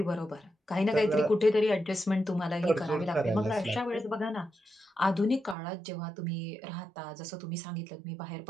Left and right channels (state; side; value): drops out; left; at 5.6 s